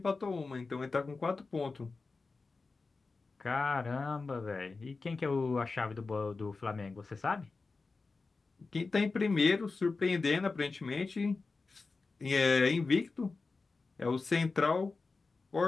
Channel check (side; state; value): right; quieter; 4.0 dB